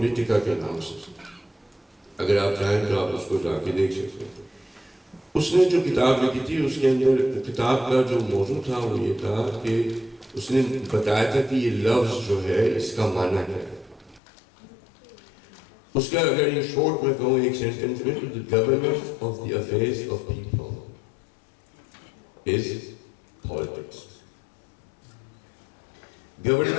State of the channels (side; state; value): right; drops out; at 14.2 s